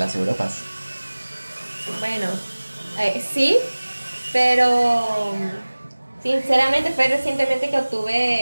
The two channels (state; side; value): inverted; both; correlation -1.00